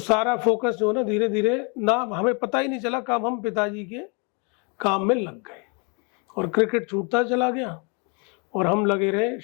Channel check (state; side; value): quieter; right; 34.2 dB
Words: सारा फोकस जो है ना, धीरे धीरे ना, हमें पता ही नहीं चला कब हम पिताजी के काम में लग गए, और क्रिकेट छूटता चला गया, और हम लगे रहे